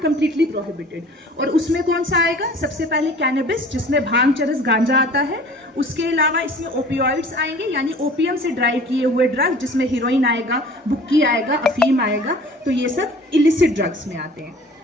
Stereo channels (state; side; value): normal; both; correlation 0.47